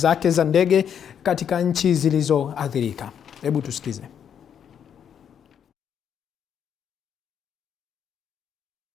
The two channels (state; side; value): quieter; right; 8.3 dB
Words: za ndege katika nchi zilizoathirika. Hebu tusikize.